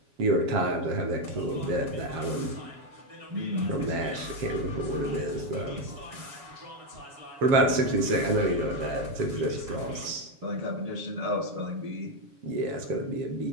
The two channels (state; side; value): late; left; 7.2 ms